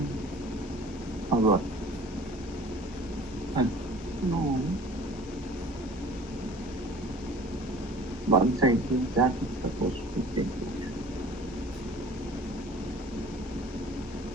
Or what? No. Once I do that, it's supposed to take it.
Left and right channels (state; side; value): normal; both; correlation 0.47